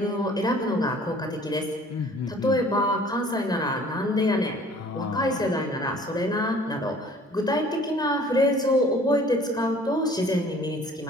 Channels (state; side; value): normal; both; correlation 0.52